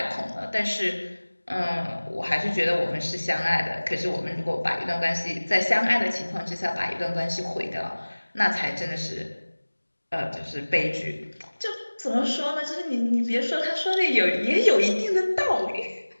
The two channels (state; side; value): inverted; both; correlation -1.00